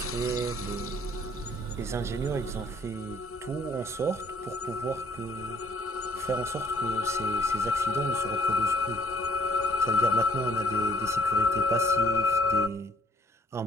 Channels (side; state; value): both; normal; correlation 0.61